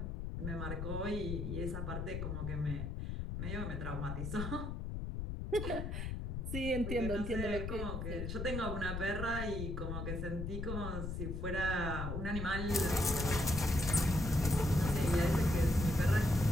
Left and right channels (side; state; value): left; noise; rumble, 4 dB below the sound